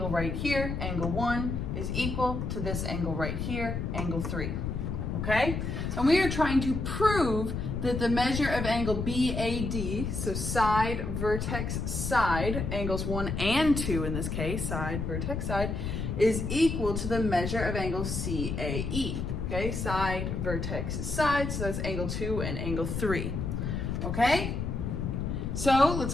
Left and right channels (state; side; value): noise; left; rumble, 3 dB below the sound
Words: right here, angle 1, is equal to this angle right here, angle 3. Okay? And we are trying to prove that the measure of angle BAD, so side, vertex, side, angles 1 and 2 in this case, side, vertex, side, is equal to the measure of angle CAE. Okay, side, vertex, side, so that's angle 2 and angle 3. Okay? So